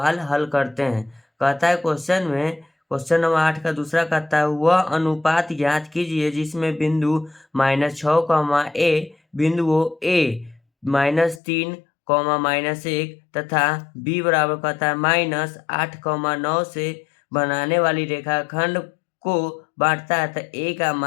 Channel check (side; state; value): right; drops out; at 11.4 s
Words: हल करते हैं। कहता है क्वेश्चन नंबर 8 का दूसरा कहता है, वह अनुपात ज्ञात कीजिए जिसमें बिंदु -6, a बिंदुओं a -3, -1 तथा b बराबर कहता है -8, 9 से बनाने वाली रेखाखंड को बांटता है, तो a का